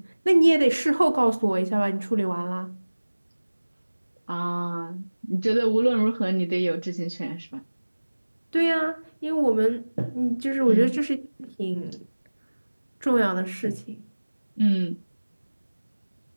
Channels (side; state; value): both; inverted; correlation -1.00